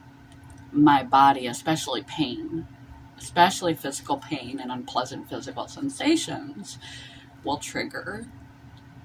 my body, especially pain, especially physical pain and unpleasant physical sensations, will trigger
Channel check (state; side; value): identical; both; correlation 1.00